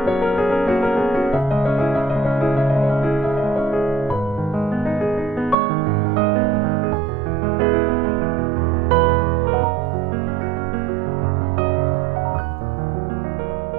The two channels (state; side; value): drops out; left; at 5.6 s